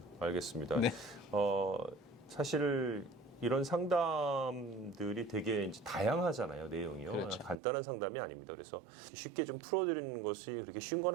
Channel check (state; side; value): drops out; left; at 7.6 s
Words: 알겠습니다. 네. 사실 이런 상담들이 되게 이제 다양하잖아요, 내용이요. 그렇죠. 간단한 상담이 아닙니다. 그래서 쉽게 좀 풀어드리는 것이 그렇게 쉬운 건